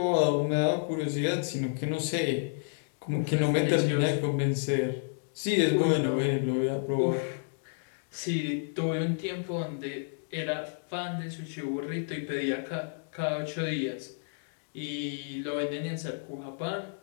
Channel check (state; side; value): silent; right; digital silence